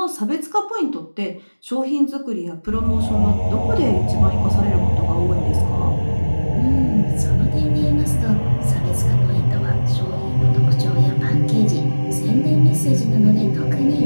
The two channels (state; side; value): inverted; both; correlation -1.00